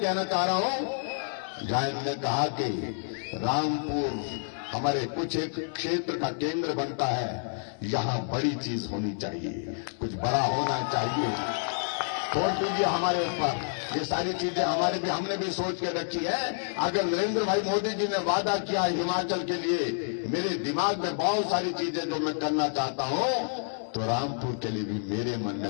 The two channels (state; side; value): silent; right; 59 dB below the other